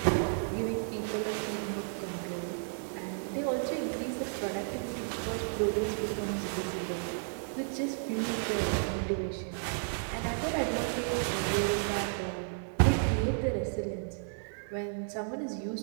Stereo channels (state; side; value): silent; left; digital silence